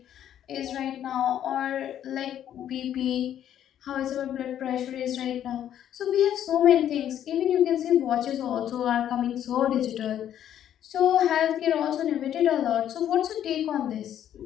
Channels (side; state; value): right; quieter; 10.6 dB